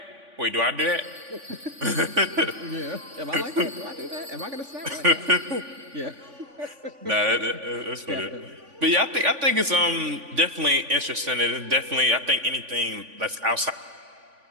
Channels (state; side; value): late; left; 3.5 ms